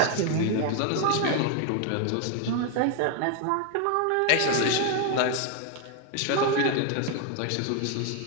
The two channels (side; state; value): both; different; correlation 0.01